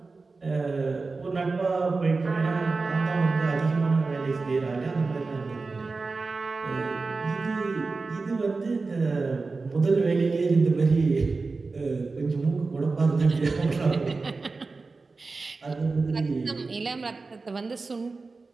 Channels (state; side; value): quieter; left; 4.0 dB